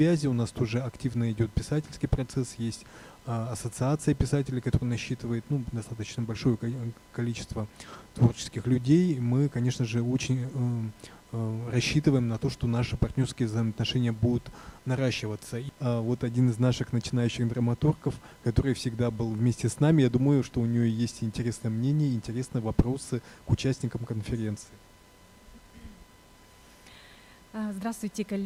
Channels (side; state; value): both; identical; correlation 1.00